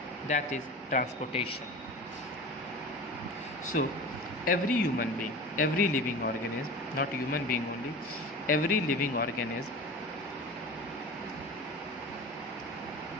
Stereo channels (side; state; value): both; normal; correlation 0.33